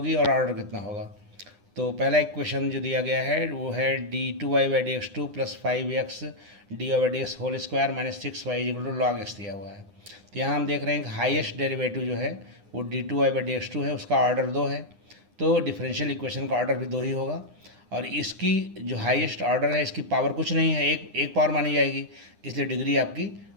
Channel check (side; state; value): left; late; 9.8 ms